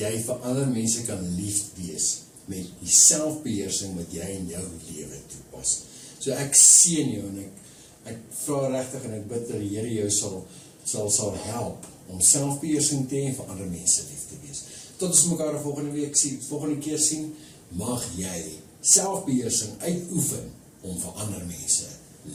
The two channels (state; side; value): identical; both; correlation 1.00